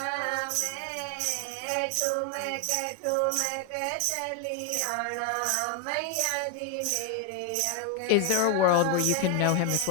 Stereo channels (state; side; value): different; both; correlation 0.01